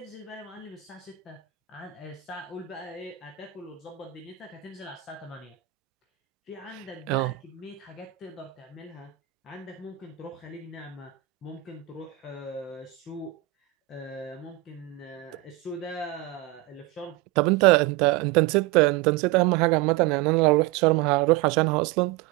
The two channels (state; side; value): quieter; left; 16.7 dB